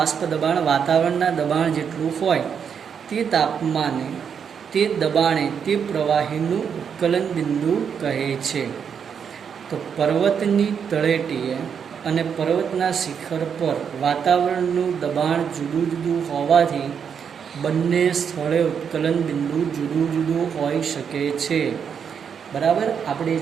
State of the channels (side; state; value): left; quieter; 7.2 dB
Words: દબાણ વાતાવરણના દબાણ જેટલું હોય તે તાપમાને તે દબાણે તે પ્રવાહીનું ઉત્કલન બિંદુ કહે છે. તો પર્વતની તળેટીએ અને પર્વતના શિખર પર વાતાવરણનું દબાણ જુદું જુદું હોવાથી બંને સ્થળે ઉત્કલન બિંદુ જુદું જુદું હોઈ શકે છે, બરાબર. આપણે